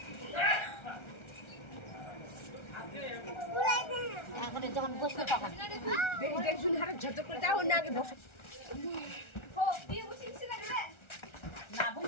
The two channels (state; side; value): late; right; 1.3 ms